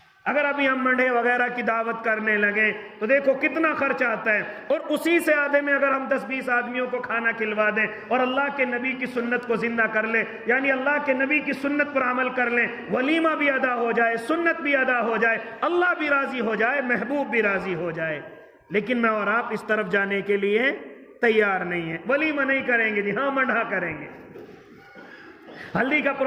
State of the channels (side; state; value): both; identical; correlation 1.00